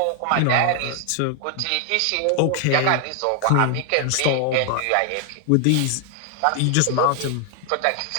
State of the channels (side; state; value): both; different; correlation 0.00